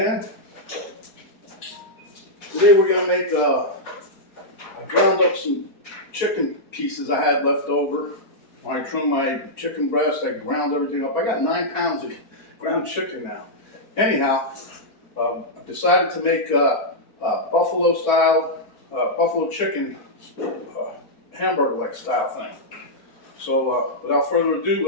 Today we're gonna make, I ground up some chicken pieces I had left over. When I trimmed my chicken breast, I ground everything up. I got 9 pounds of ground chicken now. Anyhow, I decided to make buffalo style, buffalo chicken hamburger-like style thing. So without further ado,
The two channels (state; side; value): late; right; 4.5 ms